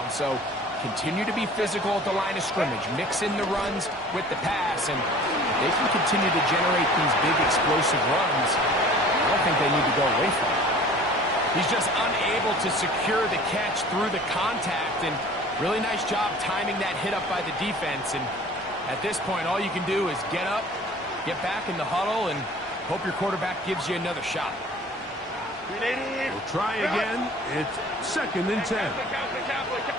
So continue to be physical at the line of scrimmage. Mix in the runs with the pass. And if they can continue to generate these big explosive runs, I don't think they need to go away from it. He's just unable to secure the catch through the contact. And really nice job timing that hit up by the defense. And at this point, all you can do is get up, get back in the huddle, and hope your quarterback gives you another shot. We'll try again. It's 2nd and 10.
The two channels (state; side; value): normal; both; correlation 0.47